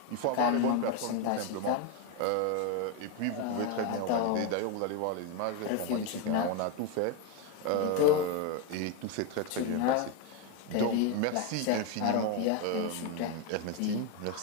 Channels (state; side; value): different; both; correlation 0.02